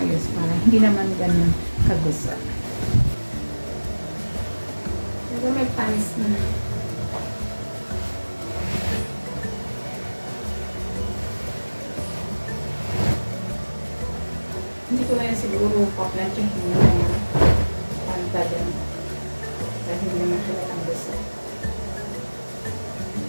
para hindi naman ganun kagusot. Pero may pants na. Hindi ko na yan siguro paplantsahin na yung panta din. Dahil hindi naman halatang gusot.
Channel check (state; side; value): inverted; both; correlation -1.00